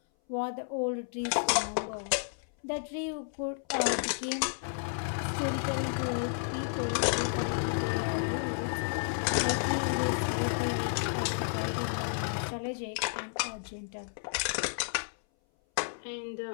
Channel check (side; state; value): right; silent; 56 dB below the other